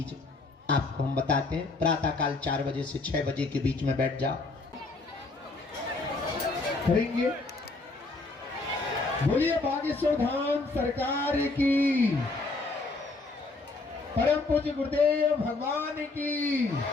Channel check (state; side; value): quieter; right; 3.4 dB